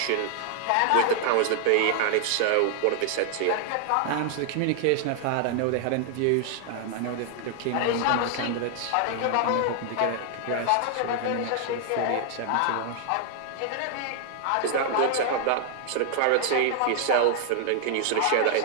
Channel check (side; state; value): both; different; correlation 0.00